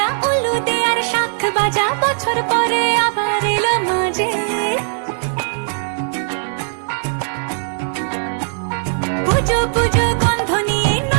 উলু দে আর শাখ বাজা, বছর পরে আবার এলো মাঝে। পুজো পুজো গন্ধ নিয়ে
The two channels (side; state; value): left; silent; digital silence